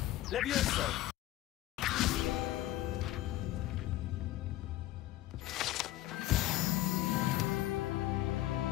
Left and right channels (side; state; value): right; quieter; 15.3 dB